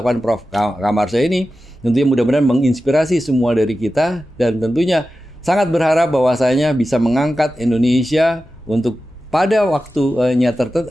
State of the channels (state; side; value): normal; both; correlation 0.93